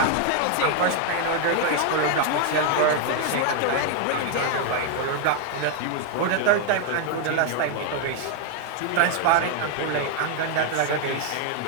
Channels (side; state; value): both; different; correlation 0.00